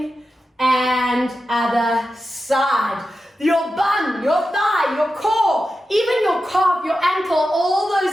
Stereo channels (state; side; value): normal; both; correlation 0.91